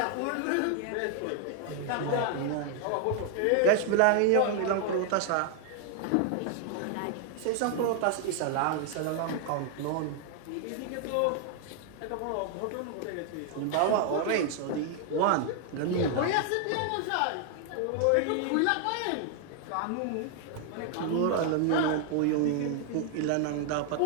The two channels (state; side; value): different; both; correlation 0.00